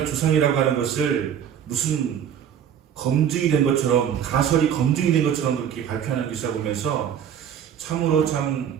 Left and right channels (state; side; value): quieter; left; 8.9 dB